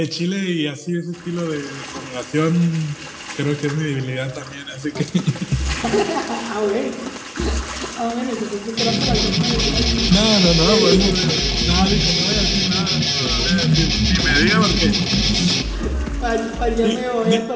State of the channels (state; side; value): identical; both; correlation 1.00